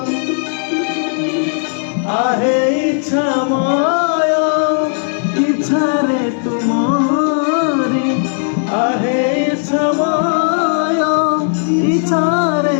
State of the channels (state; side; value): silent; right; 67 dB below the other